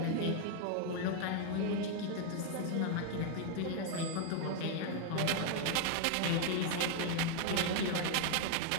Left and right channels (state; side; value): different; both; correlation 0.00